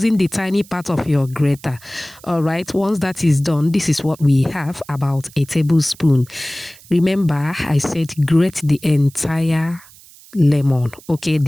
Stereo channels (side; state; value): right; noise; hiss, 23 dB below the sound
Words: the tiny part of your grater. All right. Once that is done, this is what we have, about a tablespoon. Remember, I said grate the entire lemon. Okay,